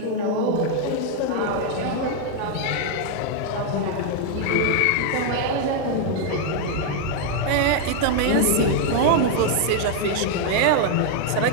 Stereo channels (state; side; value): different; both; correlation 0.00